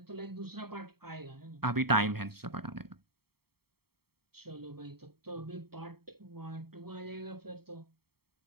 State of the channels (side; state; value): left; late; 0.95 ms